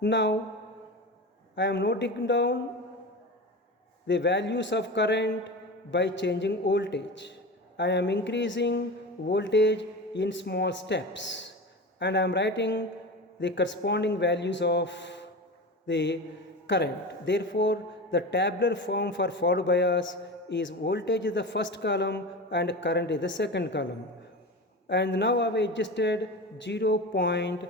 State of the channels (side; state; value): both; normal; correlation 0.28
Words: I am noting down the values of current by changing voltage. I am increasing voltage in small steps, and I am writing the corresponding values of the current. Therefore, the tabular form for forward bias is voltage is the first column and current is the second column. And now I have adjusted